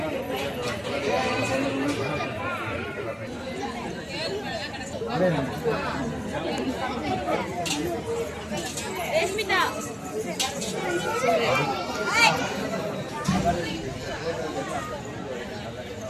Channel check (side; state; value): both; identical; correlation 1.00